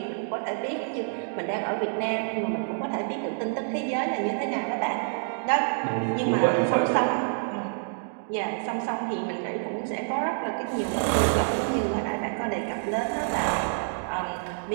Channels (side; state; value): left; silent; digital silence